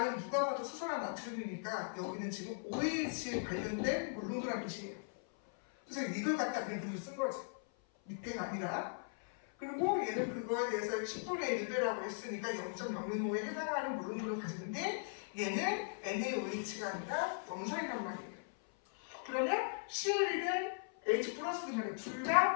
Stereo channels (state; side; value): silent; right; 52 dB below the other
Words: 누가 봐도 수소나 나트륨이니까 여기는 지금 OH에 관련된 물론도라는 뜻이에요. 그래서 이걸 갖다 그냥 글을 쓴 거지. 밑에가 아니라. 그리고 얘는 그거에 대해서 10분의 1배라고 했으니까 0.005에 해당하는 물론도를 가지는데 얘는 NaOH가 아니라 염산이란 말이에요. 그러면 CL이든 H 플러스든 간에 둘